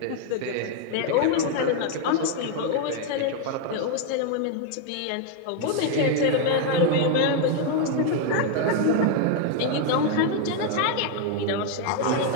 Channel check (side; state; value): both; different; correlation 0.01